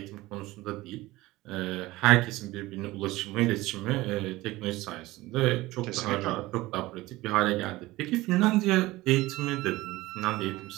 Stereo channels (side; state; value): left; quieter; 18.9 dB